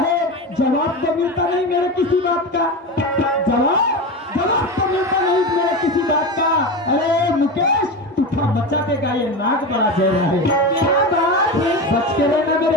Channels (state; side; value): normal; both; correlation 0.22